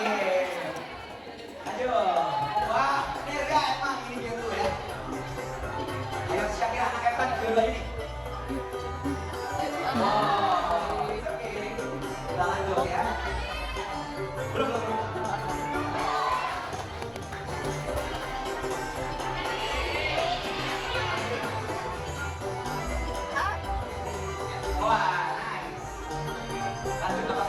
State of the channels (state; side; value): identical; both; correlation 1.00